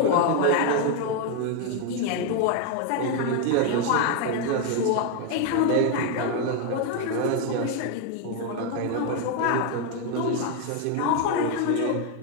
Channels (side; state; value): both; different; correlation 0.01